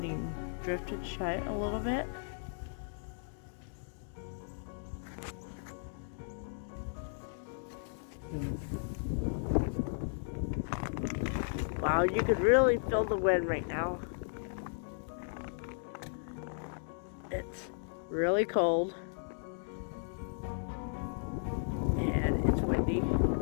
drifted shut a little bit. Wow, you could really feel the wind right now. It's really cold. And it's windy.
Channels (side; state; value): right; silent; digital silence